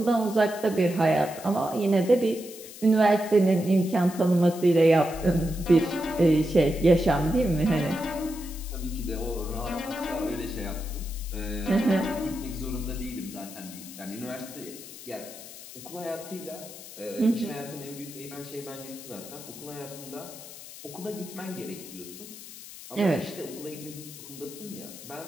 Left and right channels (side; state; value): left; noise; hiss, 15 dB below the sound